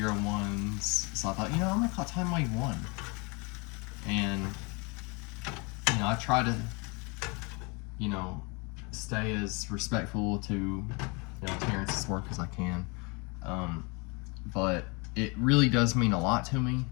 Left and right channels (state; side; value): quieter; right; 29.9 dB